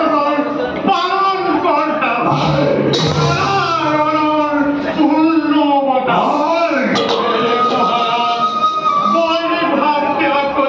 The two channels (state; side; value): identical; both; correlation 1.00